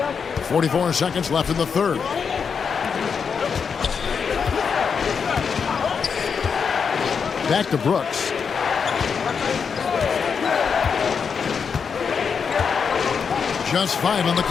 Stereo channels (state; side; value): quieter; right; 6.2 dB